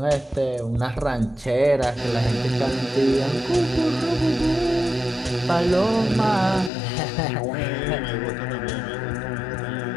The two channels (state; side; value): drops out; right; at 6.7 s